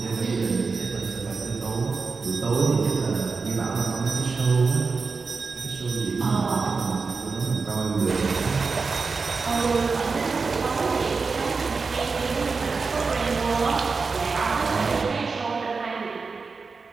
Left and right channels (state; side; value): quieter; left; 4.6 dB